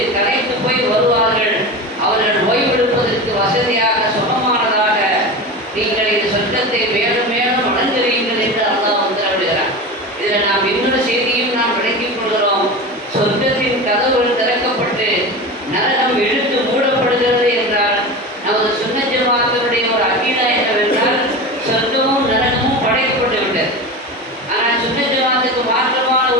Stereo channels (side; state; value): both; normal; correlation 0.27